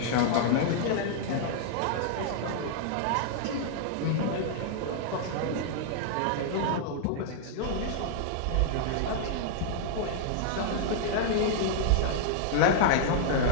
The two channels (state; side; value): different; both; correlation -0.01